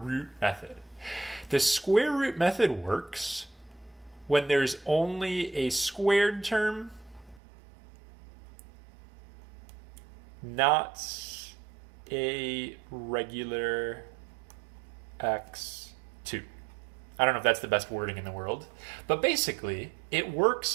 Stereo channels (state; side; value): drops out; left; at 7.4 s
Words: method. The square root method works when there's only a squared term, not a regular x2. I don't know if that's the best wording in the world, but basically it